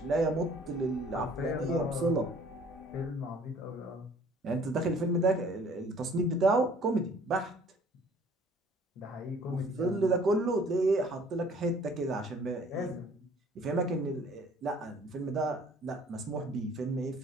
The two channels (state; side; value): normal; both; correlation 0.55